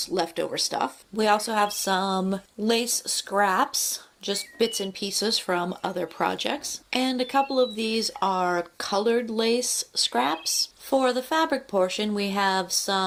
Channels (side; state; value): both; identical; correlation 1.00